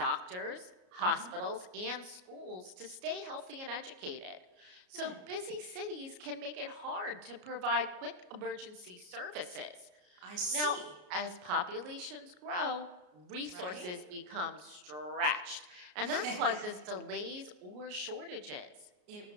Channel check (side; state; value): left; late; 33 ms